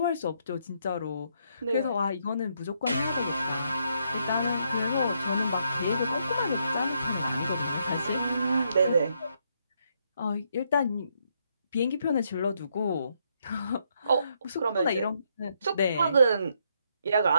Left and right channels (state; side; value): inverted; both; correlation -0.75